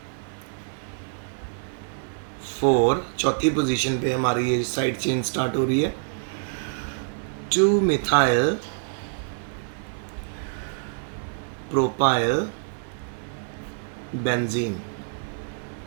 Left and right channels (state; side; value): silent; left; 61 dB below the other